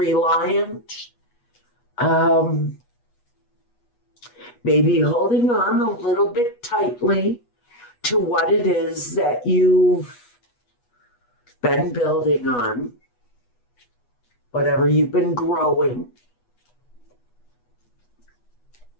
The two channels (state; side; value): late; right; 8.2 ms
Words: maybe holding on a little bit tightly to what it is that you've been building on, whatever you've been growing.